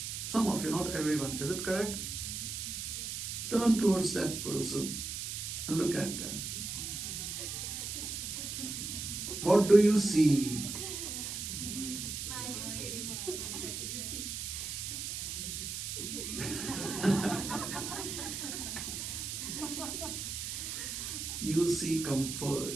Some of you, not everyone. Is it correct? Yes. Turn towards that person and look at them. What do you see? Smiling face. Beauty. You see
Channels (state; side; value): noise; right; hiss, 4 dB below the sound